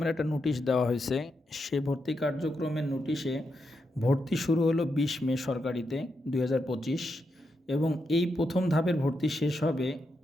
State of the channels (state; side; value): normal; both; correlation 0.84